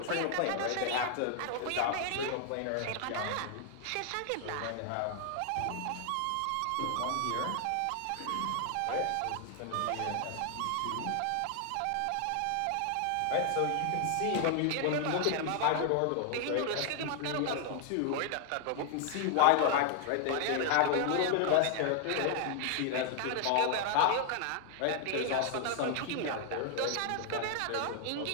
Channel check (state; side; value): different; both; correlation 0.00